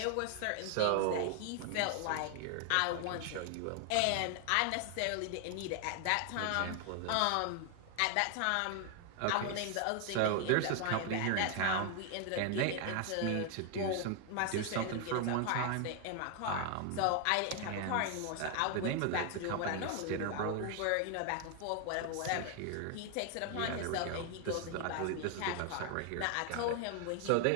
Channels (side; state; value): both; different; correlation 0.00